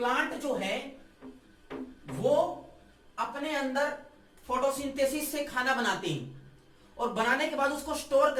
जो है वो अपने अंदर फोटोसिंथेसिस से खाना बनाते हैं और बनाने के बाद उसको स्टोर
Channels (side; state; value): both; identical; correlation 1.00